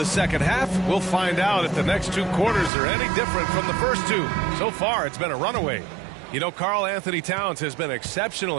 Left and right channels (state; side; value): drops out; left; at 2.7 s